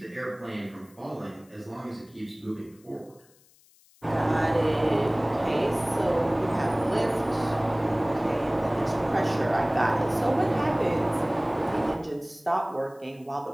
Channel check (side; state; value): left; noise; hiss, 30 dB below the sound